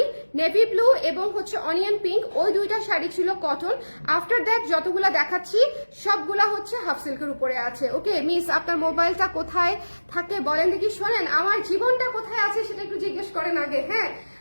নেভি ব্লু এবং হচ্ছে অনিয়ন পিঙ্ক, ওই দুইটা শাড়ি ছিল কটন। আফটার দ্যাট যতগুলা দেখাচ্ছি সবগুলা হচ্ছে হাফ সিল্কের উপরে আছে। ওকে মিস, আপনার মোবাইলটা কোথায় থাকে বলেন দেখি। শোনেন, আমার জীবনটা কোথায় আছে সেটা একটু জিজ্ঞেস করেন আগে। হ্যাঁ,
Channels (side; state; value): both; inverted; correlation -1.00